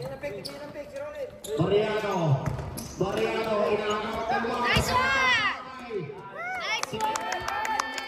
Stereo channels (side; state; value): both; identical; correlation 1.00